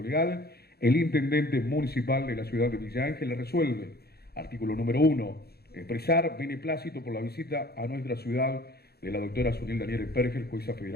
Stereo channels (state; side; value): late; right; 0.46 ms